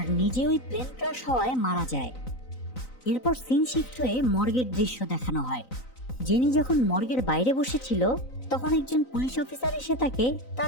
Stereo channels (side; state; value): right; late; 3.9 ms